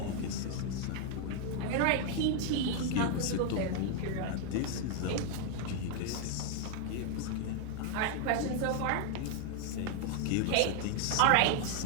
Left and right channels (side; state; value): both; different; correlation 0.00